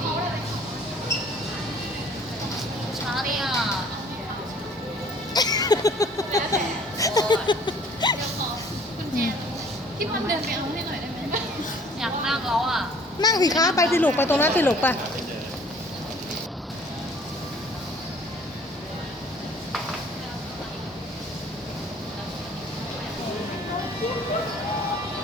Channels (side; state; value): both; normal; correlation 0.54